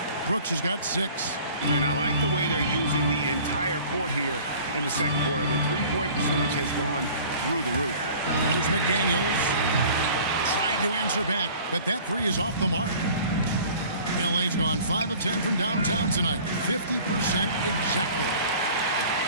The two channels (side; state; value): both; inverted; correlation -0.47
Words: Brooks has got 6. And I like the way they're using the entire court here in the second quarter. The three-point percentage has gone through the roof. Here's McDaniels. Trying to answer back, but that 3 is off the mark. LA's gone 5 of 10 from downtown tonight. 50% exactly.